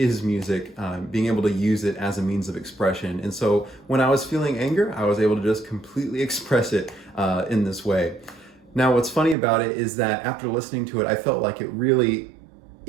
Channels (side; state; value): left; drops out; at 9.3 s